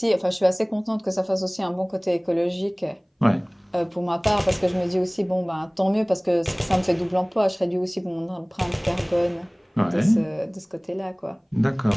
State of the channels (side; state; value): both; identical; correlation 1.00